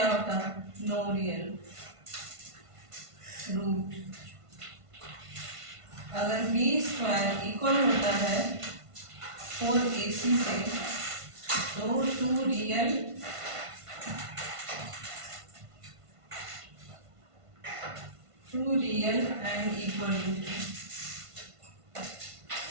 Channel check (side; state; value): left; late; 1.5 ms